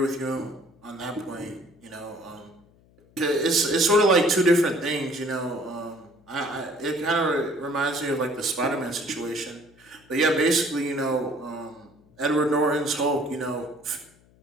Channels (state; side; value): noise; left; hum, 30 dB below the sound